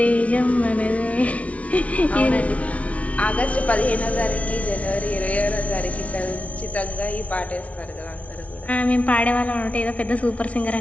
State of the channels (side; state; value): right; late; 0.065 ms